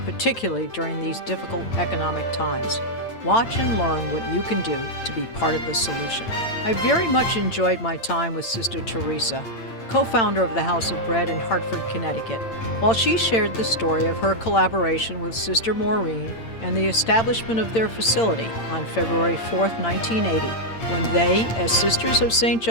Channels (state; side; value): late; right; 8.8 ms